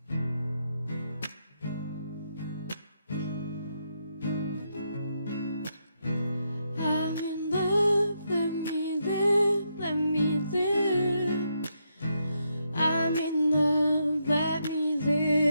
I'm in love, let me live, let me live. I'm in love, let me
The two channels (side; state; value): both; inverted; correlation -0.80